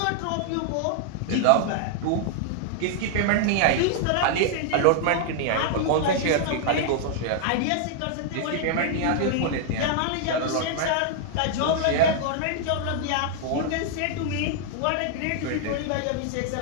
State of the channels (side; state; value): both; different; correlation 0.00